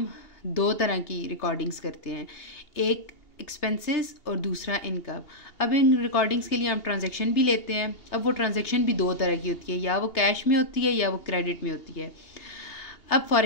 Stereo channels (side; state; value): right; late; 2.8 ms